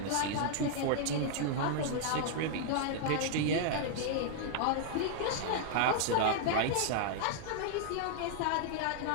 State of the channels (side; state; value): both; different; correlation 0.00